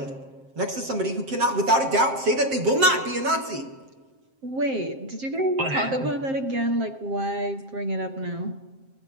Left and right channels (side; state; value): left; late; 7.6 ms